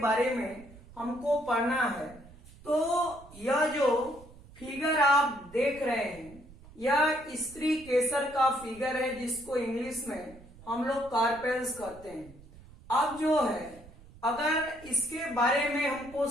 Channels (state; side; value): noise; right; rumble, 21 dB below the sound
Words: में हमको पढ़ना है। तो यह जो फिगर आप देख रहे हैं, यह स्त्री केसर का फिगर है, जिसको इंग्लिश में हम लोग कार्पेल्स कहते हैं। अब जो है अगर इसके बारे में हमको